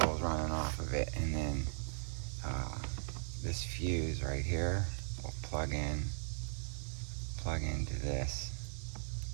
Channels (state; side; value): silent; left; digital silence